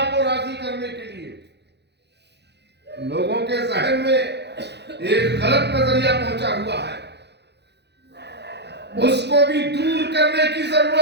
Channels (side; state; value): left; late; 0.50 ms